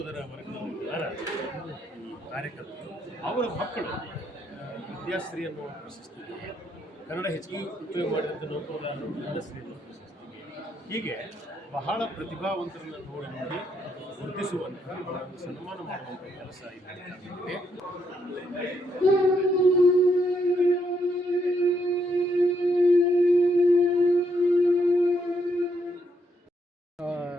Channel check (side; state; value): both; normal; correlation 0.75